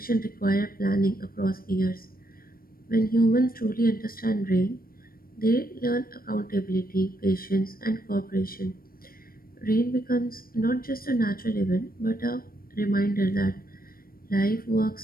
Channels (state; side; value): late; right; 0.43 ms